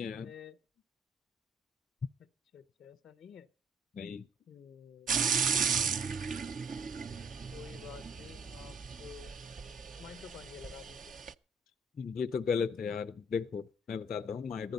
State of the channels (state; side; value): normal; both; correlation 0.60